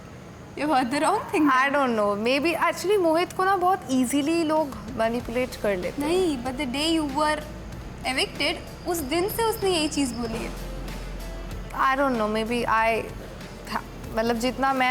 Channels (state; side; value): identical; both; correlation 1.00